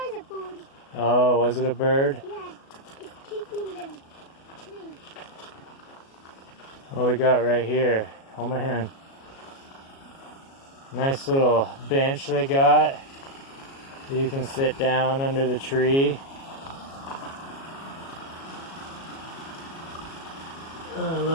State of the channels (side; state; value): right; late; 37 ms